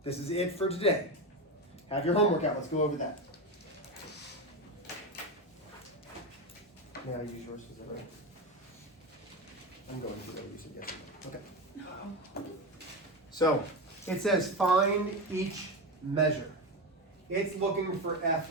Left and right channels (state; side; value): normal; both; correlation 0.17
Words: This is it for today. Have your homework out. Let's go over that. May I use yours? Is that right? I'm going to go. You said yes. Okay. So it says find each measure. It's looking for